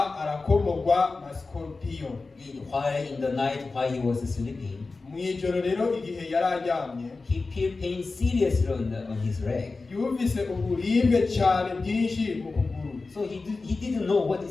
arakomogwa na scorpion While in the night, while he was sleeping, mu ijoro rero igihe yari aryamye he felt pain seriously on his leg. yumvise uburibwe cyane bwinshi mu kuguru So he didn't know what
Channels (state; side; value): quieter; right; 3.8 dB